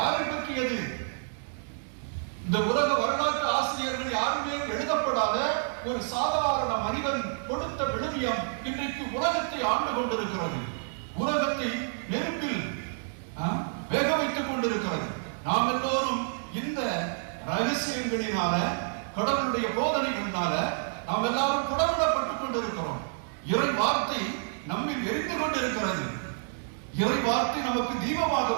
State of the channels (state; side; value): silent; left; digital silence